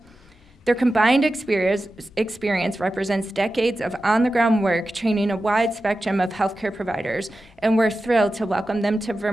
Their combined experience represents decades of on-the-ground work training a wide spectrum of healthcare providers, and we're thrilled to welcome them to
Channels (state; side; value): normal; both; correlation 0.93